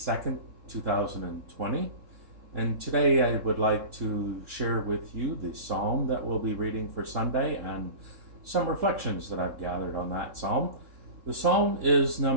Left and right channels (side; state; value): left; late; 3.7 ms